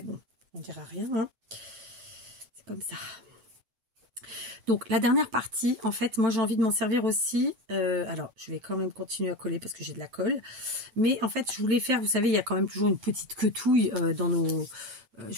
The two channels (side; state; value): left; late; 8.0 ms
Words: bon, on ne dira rien. Hein. C'est comme ça. Donc, la dernière partie, en fait, moi, j'ai envie de m'en servir aussi. Alors, je vais quand même continuer à coller parce que j'ai de la colle. Mais en fait, je voulais faire, vous savez, il y a quand même toujours une petite quetouille dans nos...